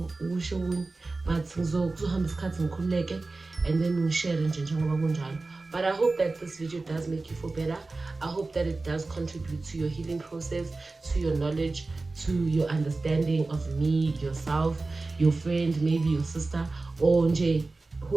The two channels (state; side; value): quieter; left; 3.5 dB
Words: ukusho okunye, but ngizohamba isikhathi ngikhululeke and then ngishare nje njengoba kunjalo. But I hope that this video does make you feel better. I hope that it does contribute to your healing process, to your knowledge, to your understanding of me, yourself, your friend, maybe your sister, or nje